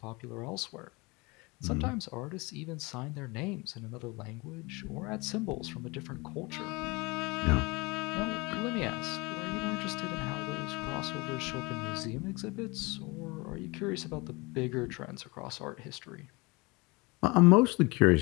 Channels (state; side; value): quieter; right; 25.6 dB